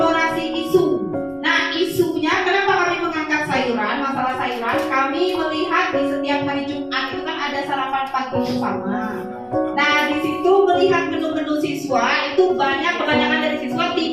isu. Nah, isunya kenapa kami mengangkat sayuran, masalah sayuran? Kami melihat di setiap hari Jumat itu kan ada sarapan pagi bersama. Nah, di situ melihat menu-menu siswa itu kebanyakan dari siswa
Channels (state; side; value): identical; both; correlation 1.00